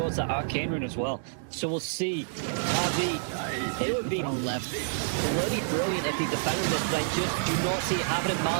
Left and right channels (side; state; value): left; silent; digital silence